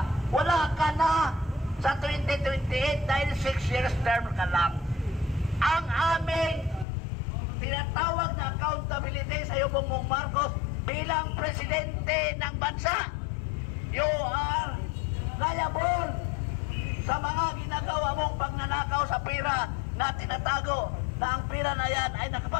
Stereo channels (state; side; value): drops out; right; at 6.9 s